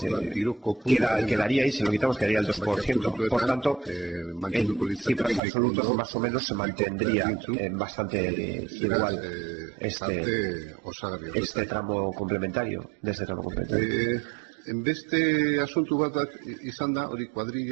quedaría ahí, si lo quitamos quedaría el 2%. Por tanto, en cifras absolutas más o menos se mantendría bastante igual este tramo complementario, de este tramo complementario. Beste asunto bat izan da, hori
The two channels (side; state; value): left; drops out; at 5.4 s